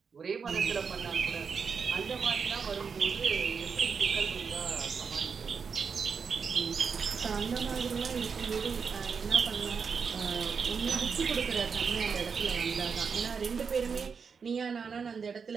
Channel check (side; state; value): left; quieter; 5.9 dB